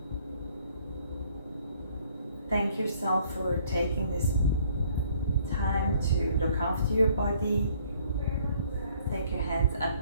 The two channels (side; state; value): both; inverted; correlation -0.61